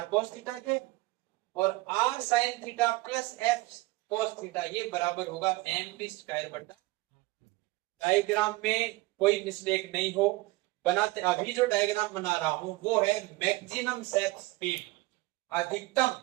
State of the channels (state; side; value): quieter; left; 21.0 dB